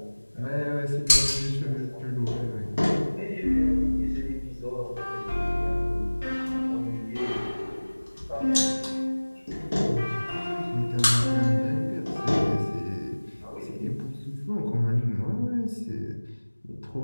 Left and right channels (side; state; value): both; inverted; correlation -1.00